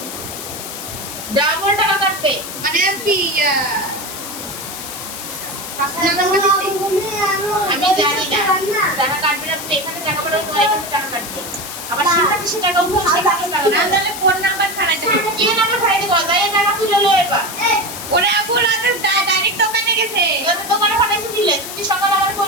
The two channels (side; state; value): left; noise; hiss, 9 dB below the sound